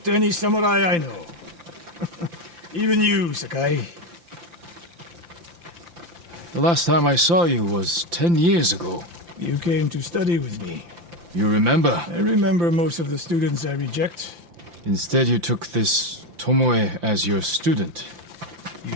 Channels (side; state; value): left; late; 5.8 ms